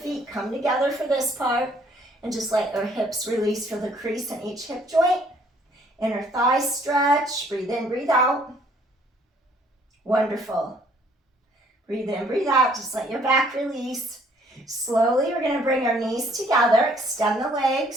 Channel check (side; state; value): both; normal; correlation 0.62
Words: come together for this part. And just let your hips release for the crease in each hip joint. Inner thighs stretch. Breathe in, breathe out. Wonderful. Breathe in, breathe out. Just let your back release. Slowly, we're going to bring our knees together. Extend the